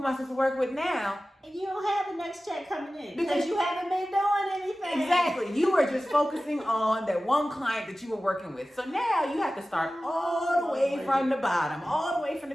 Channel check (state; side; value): normal; both; correlation 0.96